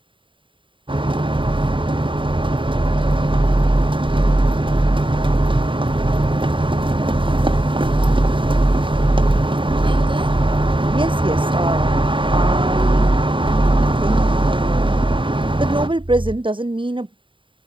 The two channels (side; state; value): left; late; 0.25 ms